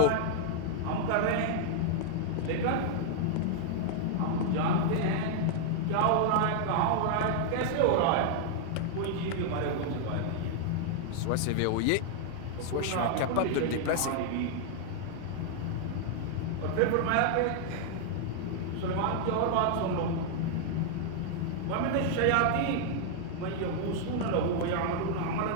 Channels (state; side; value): different; both; correlation 0.00